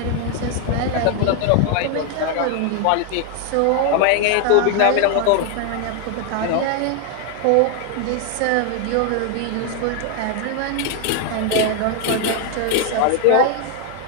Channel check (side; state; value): both; different; correlation 0.01